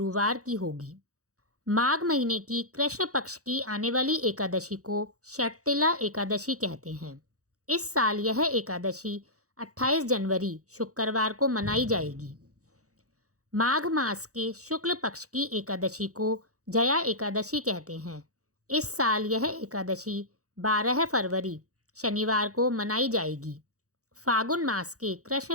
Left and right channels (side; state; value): left; late; 0.66 ms